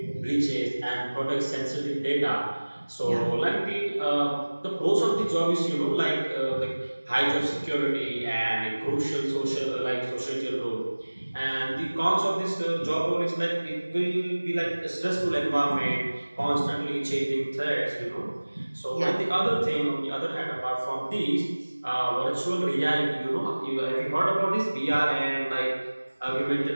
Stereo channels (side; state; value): both; inverted; correlation -1.00